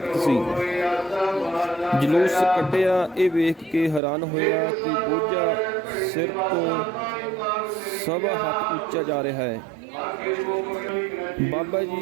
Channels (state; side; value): drops out; left; at 4.0 s